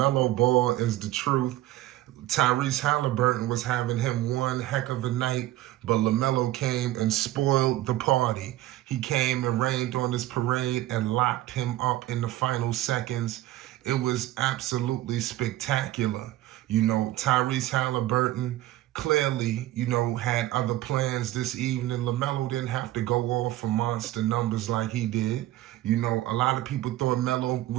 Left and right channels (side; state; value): left; quieter; 15.4 dB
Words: Ball is the truth. Tyrese Haliburton was having him one heck of a night, but LaMelo came and spoiled the party. He came and rained on his parade and locked him up in the final seconds. It was absolutely spectacular. Tyrese Haliburton clearly, had other plans this evening. LaMelo didn't have to go off for monster numbers like he did. A lot of people thought Melo